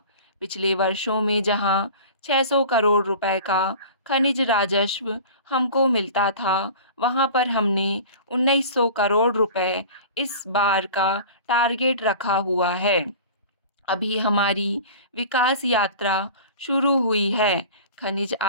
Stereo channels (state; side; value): inverted; both; correlation -0.39